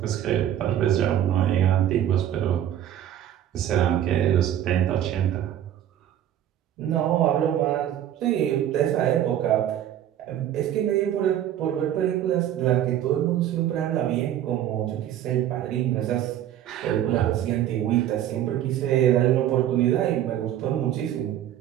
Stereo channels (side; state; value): left; quieter; 11.3 dB